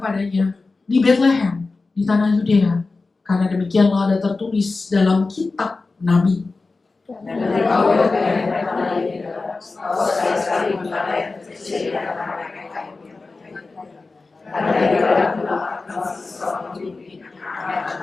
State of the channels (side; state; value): right; quieter; 3.8 dB